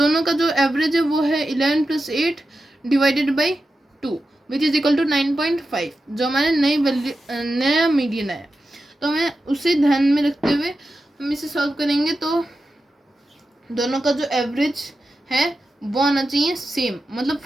का जो एवरेज है वो है 11 + 8 divided by 2 which is equal to 9.5, जो हमारे नई वैल्यू नया मीडियन आया। तो हमें उसे ध्यान में रखते हुए हम इसे सॉल्व करेंगे। तो दोनों का जो एवरेज है वो आना चाहिए सेम, मतलब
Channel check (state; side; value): normal; both; correlation 0.91